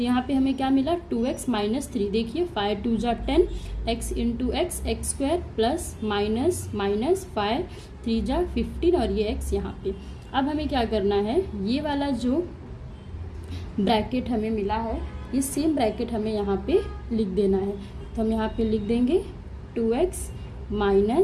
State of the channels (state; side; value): identical; both; correlation 1.00